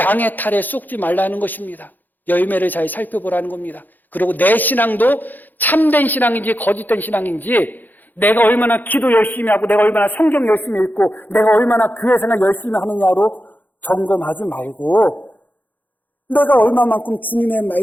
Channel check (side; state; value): right; late; 0.086 ms